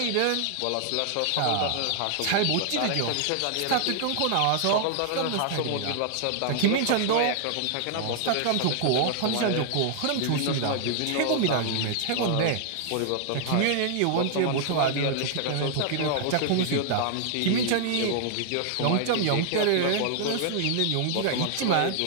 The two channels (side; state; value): both; different; correlation -0.01